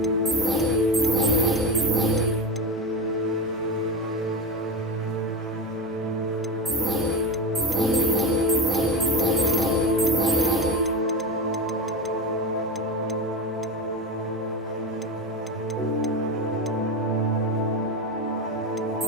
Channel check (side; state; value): both; normal; correlation 0.19